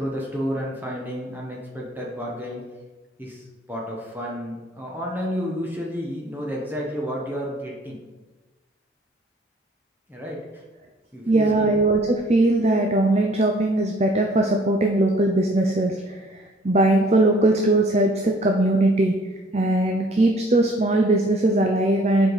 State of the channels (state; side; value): normal; both; correlation 0.57